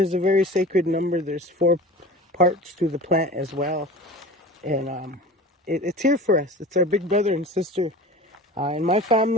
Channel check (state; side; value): normal; both; correlation 0.37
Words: a very sacred number. There's 4 parts to the plant as well. And it's here for us. It's our big brother and sister. In my